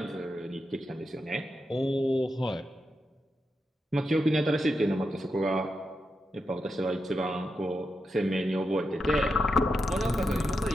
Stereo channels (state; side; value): normal; both; correlation 0.86